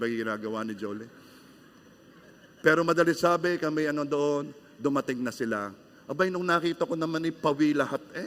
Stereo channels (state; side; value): identical; both; correlation 1.00